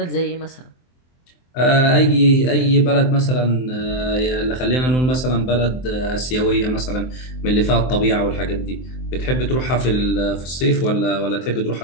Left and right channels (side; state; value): right; late; 23 ms